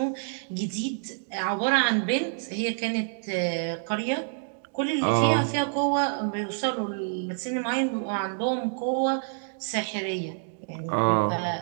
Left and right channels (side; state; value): left; silent; digital silence